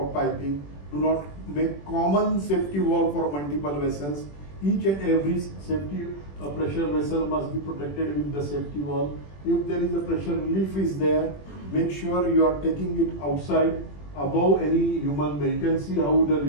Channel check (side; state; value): right; late; 21 ms